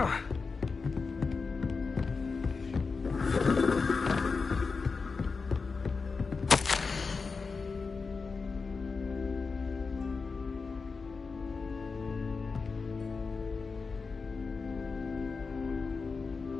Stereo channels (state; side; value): quieter; right; 4.6 dB